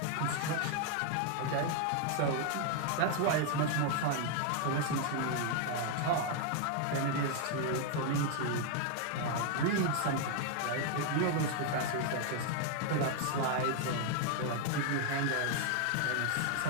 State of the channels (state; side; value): different; both; correlation 0.00